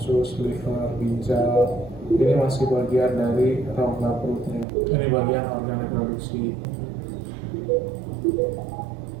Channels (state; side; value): drops out; left; at 4.7 s